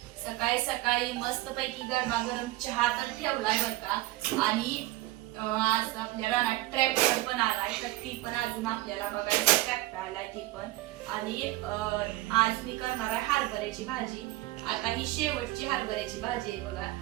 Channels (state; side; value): quieter; left; 17.6 dB